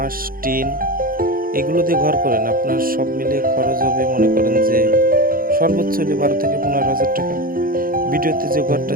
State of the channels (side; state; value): left; late; 0.42 ms